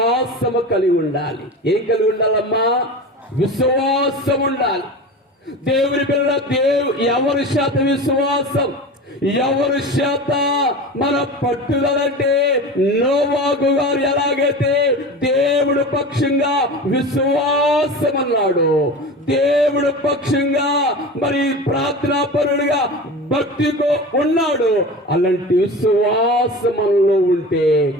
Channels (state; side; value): normal; both; correlation 0.31